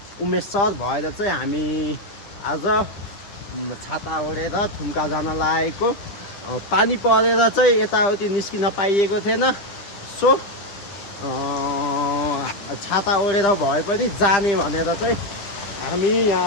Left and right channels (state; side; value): late; right; 10 ms